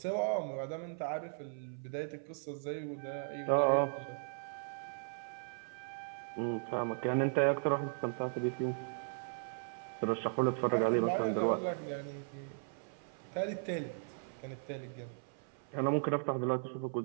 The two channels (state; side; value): silent; left; 53 dB below the other